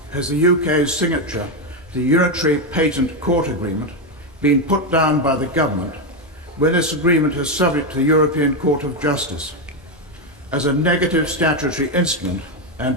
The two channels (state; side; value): normal; both; correlation 0.07